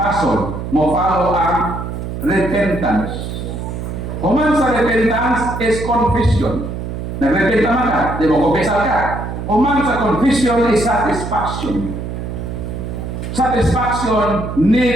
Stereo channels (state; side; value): noise; right; hum, 6 dB below the sound